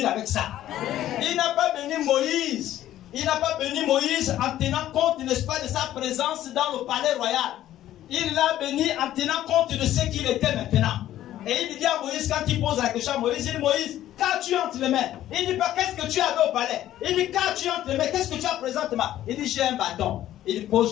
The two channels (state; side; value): quieter; right; 12.9 dB